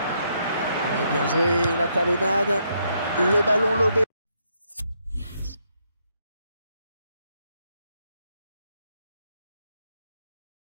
Et bien joué, la talonnade. Le ballon lobé.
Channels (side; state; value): both; inverted; correlation -0.75